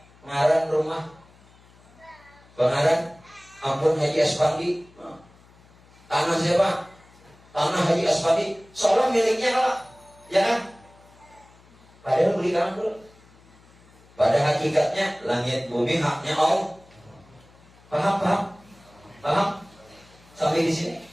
ngaran rumah, pengaran ampun Haji Aspandi. Tanah siapa? Tanah Haji Aspandi. Seolah miliknya lah, ya kan? Padahal beli tanah dulu. Pada hakikatnya langit bumi haknya Allah. Paham? Sampai di sini?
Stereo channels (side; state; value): left; noise; hum, 27 dB below the sound